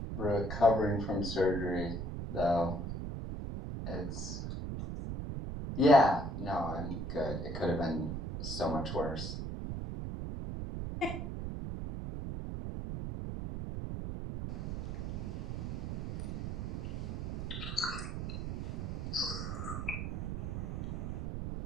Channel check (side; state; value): right; noise; rumble, 4 dB below the sound